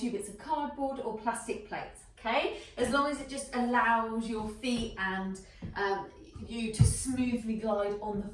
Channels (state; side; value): identical; both; correlation 1.00